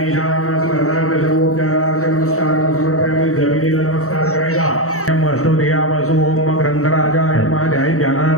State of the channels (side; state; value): right; late; 0.64 ms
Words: स्मरणार्थ सर्वोपचारार्थ नमस्कार समर्पयामि। जमिनीला नमस्कार करायचा। अष्टोदयावसु ओम ग्रंथराजाय ध्याय